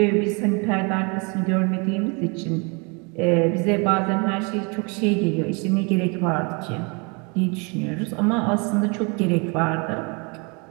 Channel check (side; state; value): left; quieter; 31.7 dB